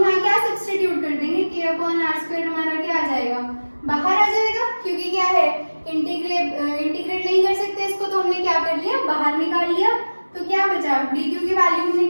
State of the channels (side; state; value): both; inverted; correlation -1.00